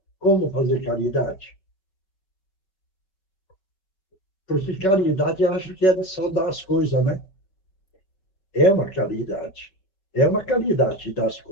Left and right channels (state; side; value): late; right; 5.3 ms